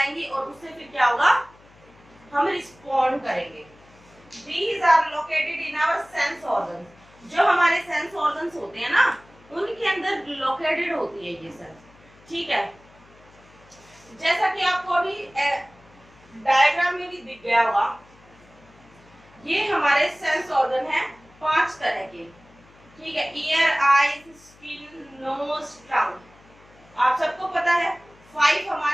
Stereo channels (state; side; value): noise; left; hum, 26 dB below the sound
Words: और उससे फिर क्या होगा, हम रिस्पॉन्ड करेंगे। These are located in our sense organs। जो हमारे सेंस ऑर्गन्स होते हैं ना, उनके अंदर लोकेटेड होती है ये सेल्स, ठीक है। जैसा कि आपको अभी डायग्राम में भी दिख गया होगा, ये हमारे सेंस ऑर्गन है 5 तरह के, ठीक है। ईयर, आईज, स्किन, नोज, टंग। आप सबको पता है 5